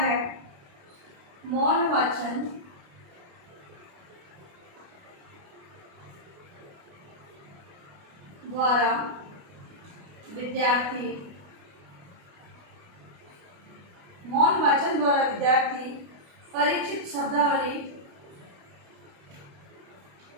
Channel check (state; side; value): late; left; 28 ms